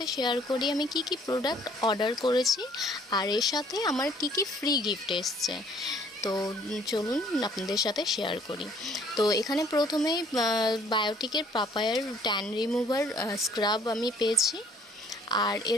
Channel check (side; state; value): both; normal; correlation 0.59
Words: শেয়ার করি আমি কি কি প্রোডাক্ট অর্ডার করেছি আর এর সাথে আমার কি কি ফ্রি গিফট এসছে। তো চলুন আপনাদের সাথে শেয়ার করি। তো এখানে প্রথমেই বায়োটিকের পাপায়ার ট্যান রিমুভার স্ক্রাব আমি পেয়েছি। আর